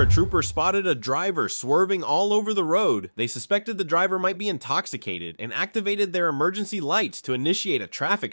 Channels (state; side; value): inverted; both; correlation -1.00